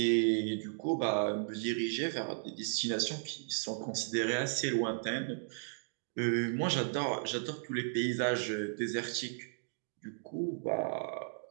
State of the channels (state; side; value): silent; left; digital silence